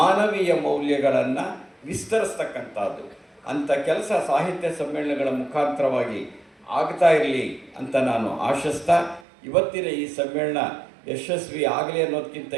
ಮೌಲ್ಯಗಳನ್ನು ವಿಸ್ತರಿಸ್ತಕ್ಕಂಥದ್ದು. ಅಂಥ ಕೆಲಸ ಸಾಹಿತ್ಯ ಸಮ್ಮೇಳನಗಳ ಮುಖಾಂತರವಾಗಿ ಆಗ್ತಾ ಇರಲಿ ಅಂತ ನಾನು ಆಶಿಸ್ತಾ ಇವತ್ತಿನ ಈ ಸಮ್ಮೇಳನ ಯಶಸ್ವಿ ಆಗಲಿ ಅನ್ನೋದಕ್ಕಿಂತ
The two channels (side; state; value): left; drops out; at 9.2 s